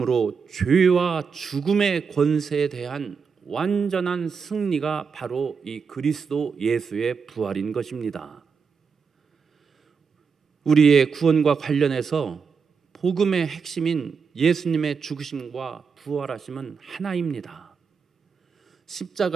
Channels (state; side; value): quieter; left; 5.8 dB